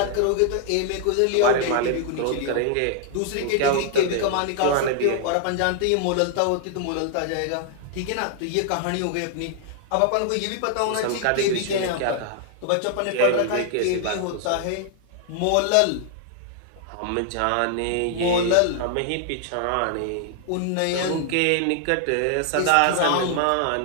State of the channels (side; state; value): both; different; correlation 0.00